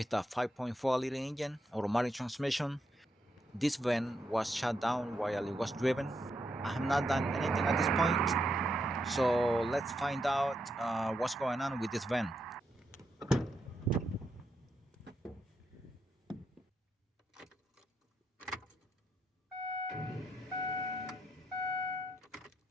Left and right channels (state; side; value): normal; both; correlation 0.81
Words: a 5.4 liter engine, automatic transmission. This van was shut down while it was driven. I have not done anything at this point, so let's find out what's going on with this van.